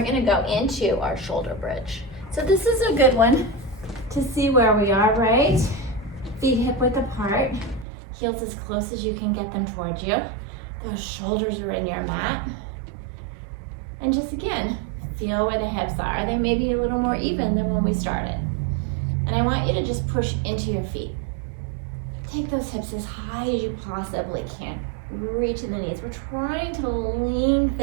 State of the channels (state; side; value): drops out; left; at 7.9 s